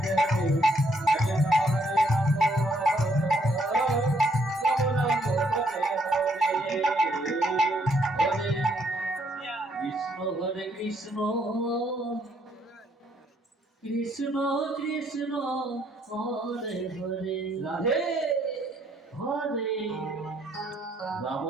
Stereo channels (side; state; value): both; normal; correlation 0.69